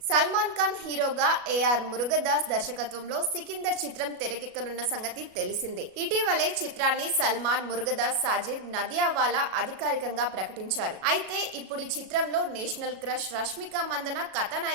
సల్మాన్ ఖాన్ హీరోగా ఏఆర్ మురుగదాస్ దర్శకత్వంలో సికిందర్ చిత్రం తెరకెక్కనున్న సంగతి తెలిసిందే. ఇటీవలే చిత్రాన్ని సల్మాన్, మురుగదాస్, సాజిద్, నదియావాలా అధికారికంగా ప్రకటించారు. అయితే ఇప్పుడు ఈ చిత్రంలో నేషనల్ క్రష్ రష్మిక మందన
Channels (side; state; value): left; late; 37 ms